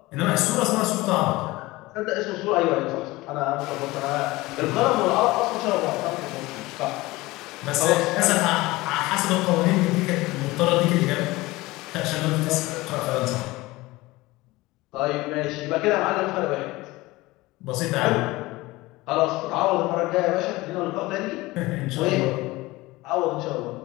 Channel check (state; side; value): quieter; right; 20.3 dB